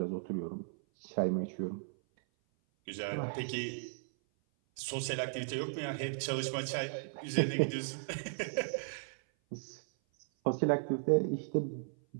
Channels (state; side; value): silent; left; 54 dB below the other